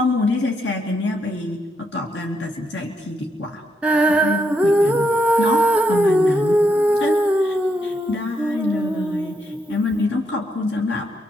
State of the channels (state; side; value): normal; both; correlation 0.78